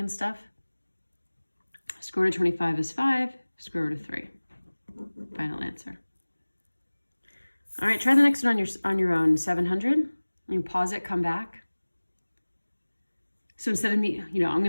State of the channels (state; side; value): inverted; both; correlation -1.00